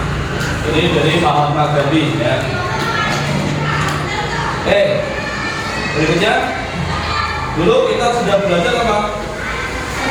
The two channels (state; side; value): identical; both; correlation 1.00